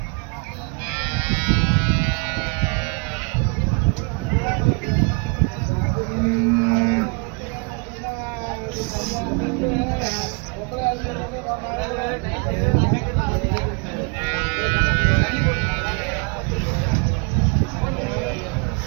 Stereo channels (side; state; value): left; quieter; 33.4 dB